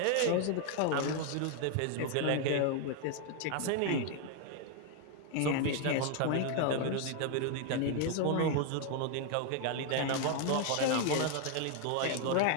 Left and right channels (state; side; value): different; both; correlation 0.00